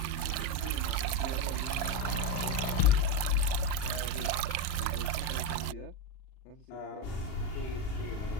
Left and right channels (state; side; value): late; right; 38 ms